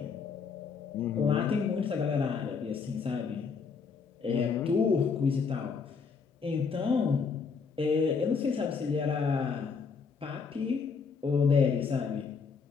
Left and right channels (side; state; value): right; quieter; 5.5 dB